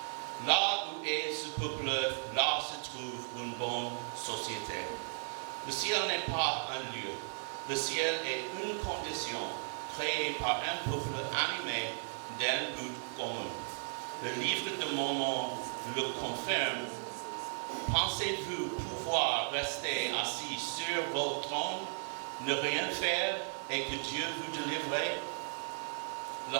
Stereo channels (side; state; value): left; silent; digital silence